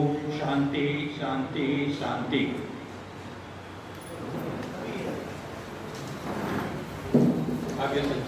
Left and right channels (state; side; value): identical; both; correlation 1.00